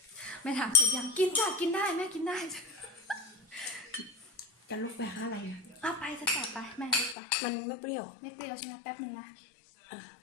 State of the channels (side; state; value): right; drops out; at 7.2 s